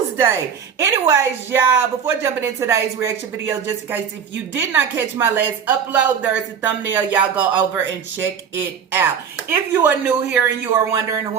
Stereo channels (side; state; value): left; quieter; 7.4 dB